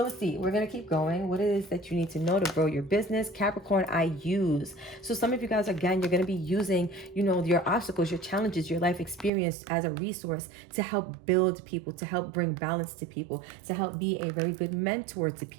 let's see, we're going to keep going. What it is that you need to know to grow your business. Capricorn, I use. So some of you guys, again, you're going to be using, your obstacles, your challenges, your life experience as a resource to help build people, to help bring balance to people, to help be a very good mentor to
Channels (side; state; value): left; drops out; at 9.3 s